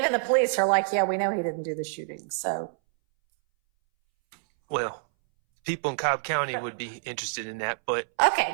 the police are like, yeah, we know he didn't do the shooting, so. Well, people in Cobb County would be interested in that, but. Okay,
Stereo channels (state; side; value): silent; left; 60 dB below the other